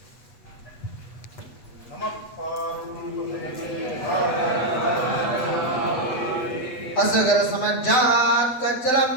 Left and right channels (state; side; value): late; right; 8.3 ms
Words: नमः असगर समज्जात कज्जलम